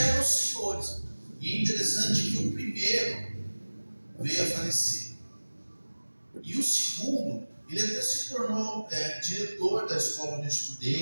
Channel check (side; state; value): both; inverted; correlation -1.00